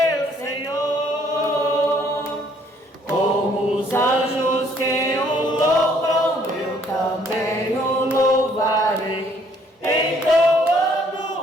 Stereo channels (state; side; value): normal; both; correlation 0.64